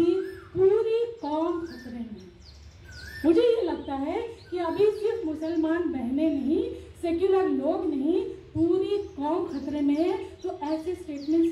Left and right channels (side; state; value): both; identical; correlation 1.00